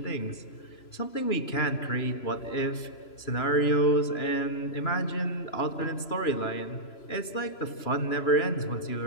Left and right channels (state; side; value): late; right; 3.0 ms